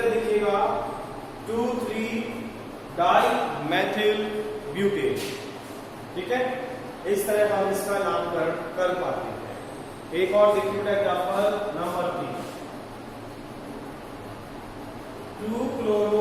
देखिएगा, 2 3 डाई मैथिल ब्यूटेन, ठीक है। इस तरह हम इसका नामकरण कर पाते हैं। एक और देखिए example number 3, 2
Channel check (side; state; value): both; identical; correlation 1.00